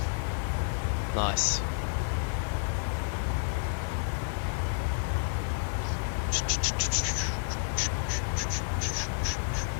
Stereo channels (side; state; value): right; silent; digital silence